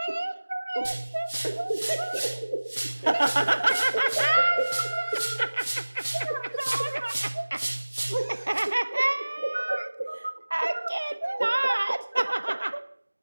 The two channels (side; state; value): both; inverted; correlation -1.00